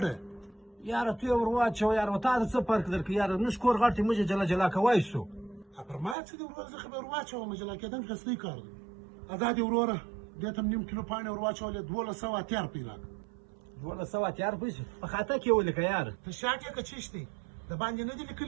یاره تو یې ور واچوه یاره، و تا ته څه فرق درکړي یاره، زموږ کور غټ دی، موږ یې جلا کوی سو. پر ما څه دي ورور، زه خو به ور واچوم، جلا کېدل ښه کار دی. ادا دې وروره دې ته 1/2 کیلو پاڼې ور واچولې، 1200 اتیار روپۍ راکړه. 1200 اتیار پیسې په خاطه کې ولیکه یاره. ته شاټ یې که چیش دی؟ د باندې نه دي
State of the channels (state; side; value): drops out; left; at 6.2 s